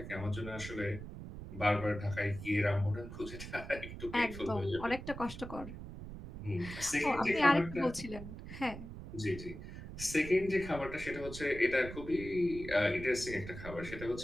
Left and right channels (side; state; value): right; noise; rumble, 11 dB below the sound